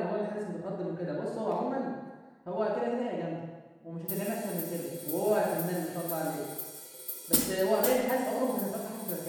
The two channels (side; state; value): both; identical; correlation 1.00